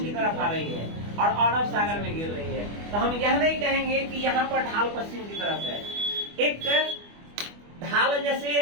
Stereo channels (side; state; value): left; late; 24 ms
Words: की तरफ आ रही है और अरब सागर में गिर रही है। तो हम यह नहीं कहेंगे कि यहाँ पर ढाल पश्चिम की तरफ है। एक ढाल जैसे